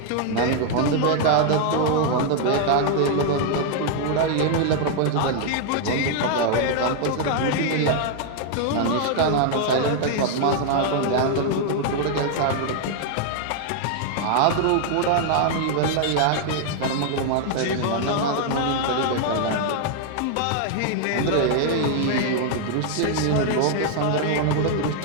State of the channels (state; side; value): different; both; correlation 0.00